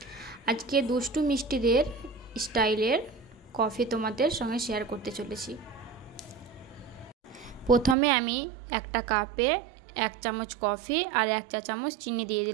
আজকে দুষ্টু মিষ্টিদের স্টাইলের কফি তোমাদের সঙ্গে শেয়ার করতে চলেছি। প্রথমে আমি একটা কাপে 1 চামচ কফি আর 1 চা চামচ চিনি দিয়ে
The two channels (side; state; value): left; drops out; at 8.0 s